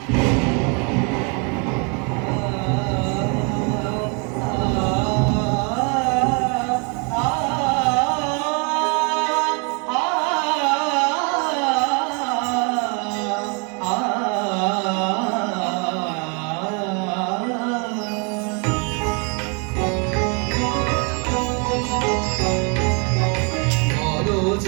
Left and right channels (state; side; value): quieter; left; 34.9 dB